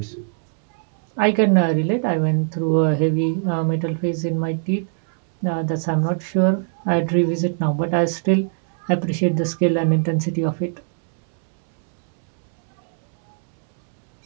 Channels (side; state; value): left; silent; 65 dB below the other